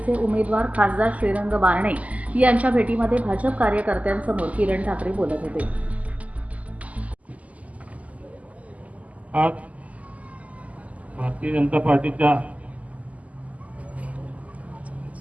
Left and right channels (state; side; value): late; left; 0.072 ms